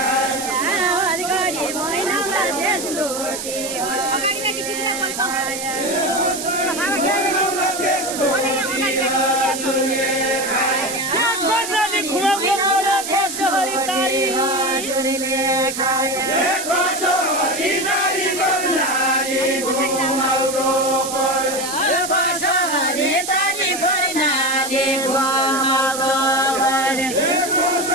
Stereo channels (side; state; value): right; noise; hiss, 7 dB below the sound